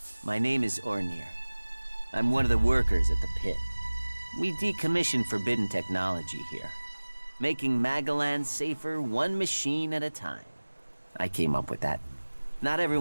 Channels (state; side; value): inverted; both; correlation -1.00